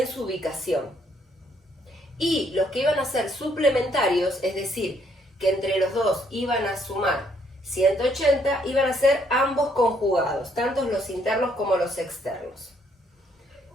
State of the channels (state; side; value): normal; both; correlation 0.69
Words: su ubicación. Y los que iban a ser suplementarios, es decir, que entre los dos iban a sumar 180, iban a ser ambos conjugados, tanto los internos como los externos.